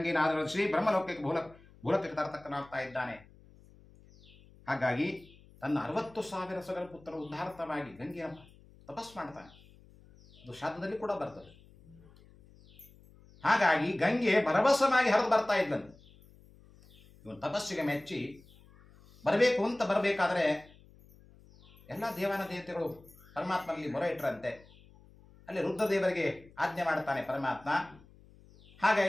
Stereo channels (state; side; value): noise; left; hum, 25 dB below the sound